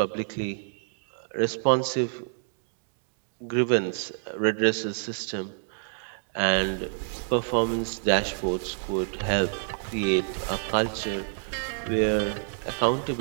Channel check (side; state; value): left; silent; digital silence